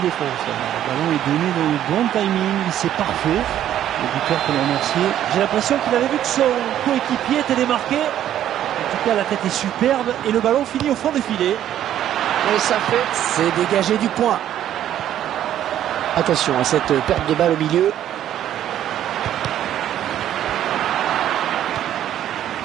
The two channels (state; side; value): quieter; left; 11.4 dB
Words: Le ballon est donné dans le bon timing, c'est parfait. Le buteur peut le remercier. J'ai l'impression qu'il avait vu que son coéquipier était démarqué. En tout cas, la tête est superbe et le ballon finit au fond des filets. Et ça fait, c'est dégagé du point. Attention à cette perte de balle au milieu.